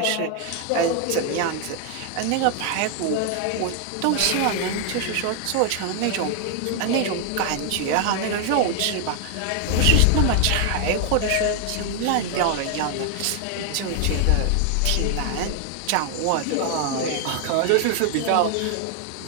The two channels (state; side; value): different; both; correlation 0.00